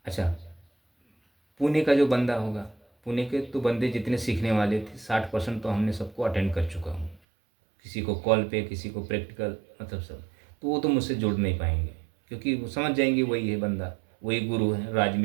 अच्छा, पुणे का जो बंदा होगा, पुणे के तो बंदे जितने सीखने वाले थे 60% तो हमने सबको अटेंड कर चुका हूँ, किसी को कॉल पे, किसी को प्रैक्टिकल, मतलब सब। तो वो तो मुझसे जुड़ नहीं पाएंगे, क्योंकि वो समझ जाएंगे वही है बंदा, वही गुरु है, राज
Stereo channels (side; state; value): left; drops out; at 7.2 s